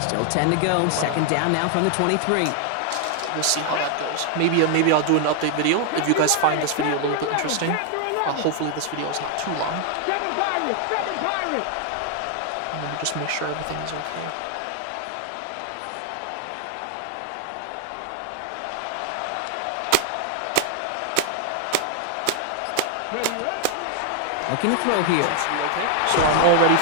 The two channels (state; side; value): different; both; correlation 0.00